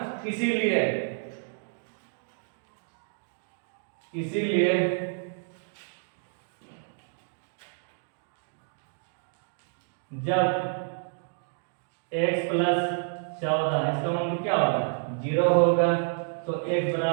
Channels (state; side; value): silent; left; digital silence